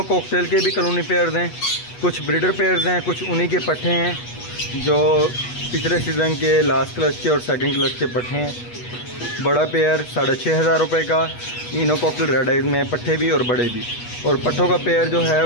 कॉकटेल के भी कॉलोनी पेयर्स हैं, कुछ ब्रीडर पेयर्स हैं, कुछ उन्हीं के पट्टे हैं जो पिछले सीज़न के लास्ट क्लच के और सेकंड क्लच के पट्टे हैं। बड़ा पेयर 6,500 रुपये का, इनो कॉकटेल रेड आइज में पट्टे भी और बड़े भी, और पट्ठों का पेयर जो है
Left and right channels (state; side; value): late; right; 8.2 ms